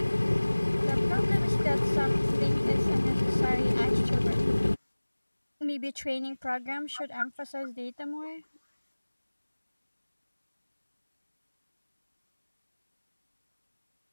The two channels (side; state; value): both; inverted; correlation -1.00